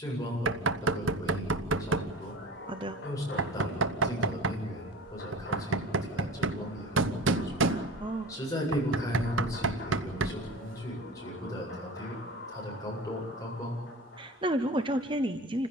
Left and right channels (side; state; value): both; normal; correlation 0.37